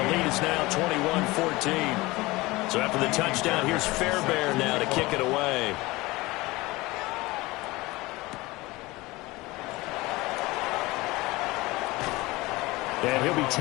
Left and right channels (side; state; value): right; quieter; 21.2 dB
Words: lead is now 21-14. So after the touchdown, here's Fairbairn now to kick it away. And he'll be